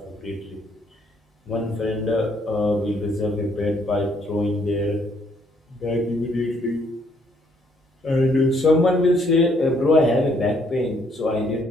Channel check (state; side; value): normal; both; correlation 0.68